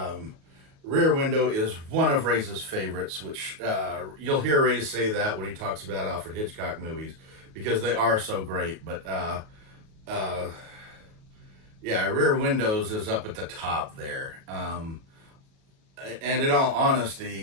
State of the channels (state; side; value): late; left; 37 ms